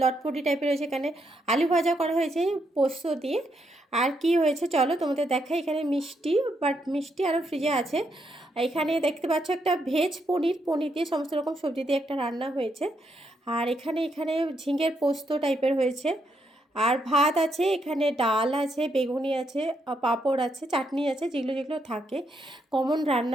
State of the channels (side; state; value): both; normal; correlation 0.78